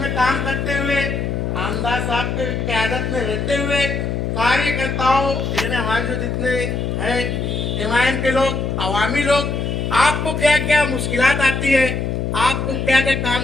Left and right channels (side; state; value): left; noise; hum, 1 dB below the sound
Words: काम करते हुए, आमदार साहब के क़यादत में रहते हुए कार्यकर्ताओं यानी हमारे जो जितने हैं एमआईएम के लोग, अवामी लोग, आपको क्या क्या मुश्किलात आती है, आपको क्या क्या